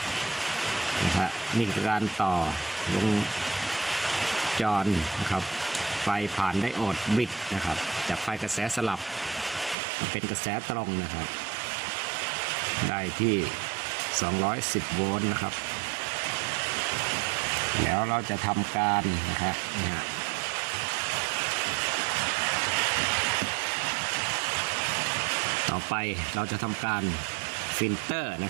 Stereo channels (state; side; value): drops out; left; at 9.8 s